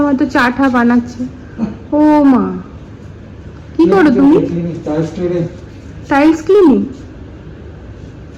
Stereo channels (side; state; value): both; identical; correlation 1.00